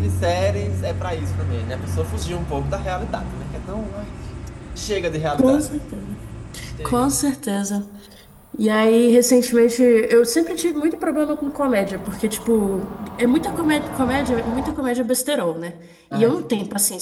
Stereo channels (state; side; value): identical; both; correlation 1.00